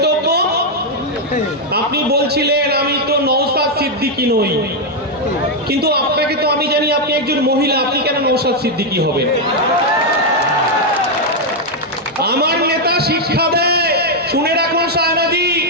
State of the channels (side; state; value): both; normal; correlation 0.01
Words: আপনি বলছিলেন আমি তো নওশাদ সিদ্দিকী নই, কিন্তু আপনাকে তো আমি জানি আপনি একজন মহিলা, আপনি কেন নওশাদ সিদ্দিকী হবেন? আমার নেতা শিক্ষা দেয়, শুনে রাখুন সায়নাদি,